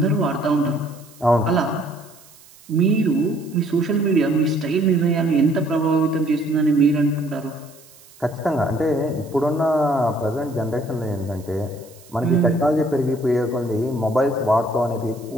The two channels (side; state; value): right; noise; hiss, 24 dB below the sound